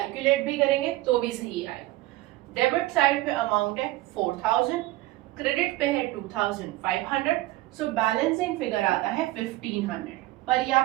भी करेंगे तो भी सही आएगा। डेबिट साइड पे अमाउंट है 4000, क्रेडिट पे है 2500, सो बैलेंसिंग फिगर आता है 1500। पर ये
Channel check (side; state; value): left; quieter; 18.2 dB